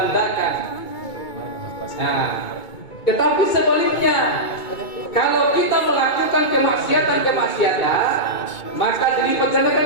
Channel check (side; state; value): right; late; 2.2 ms